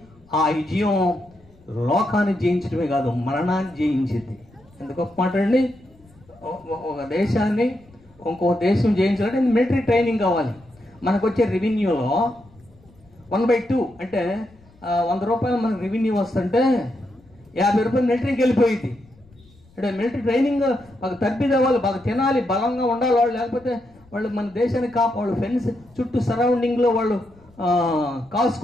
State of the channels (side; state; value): left; noise; rumble, 28 dB below the sound